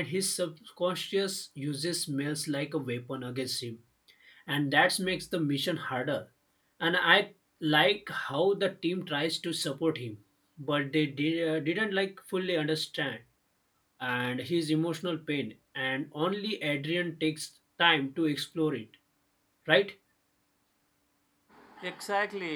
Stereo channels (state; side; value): identical; both; correlation 1.00